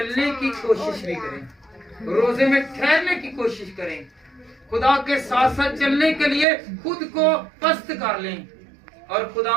की कोशिश भी करें, रोजे में ठहरने की कोशिश करें, खुदा के साथ साथ चलने के लिए खुद को पस्त कर लें और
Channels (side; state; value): left; drops out; at 6.5 s